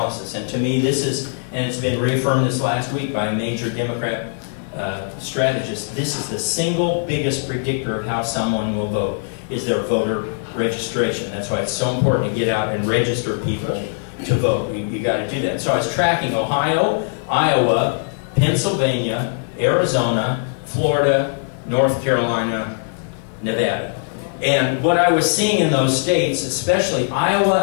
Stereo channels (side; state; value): right; silent; 56 dB below the other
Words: And to me, this is, and it's been reaffirmed this last week by a major Democrat strategist, this is the single biggest predictor of how someone will vote, is their voter registration. That's why it's so important to get out and register people to vote. You got to do that. So I was tracking Ohio, Iowa, Pennsylvania, Arizona, Florida, North Carolina, Nevada. And what I was seeing in those states, especially